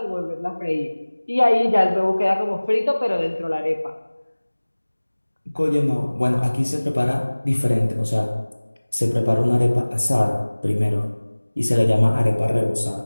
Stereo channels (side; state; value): both; inverted; correlation -1.00